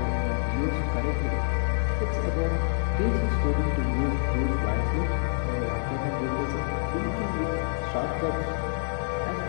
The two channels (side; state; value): right; silent; digital silence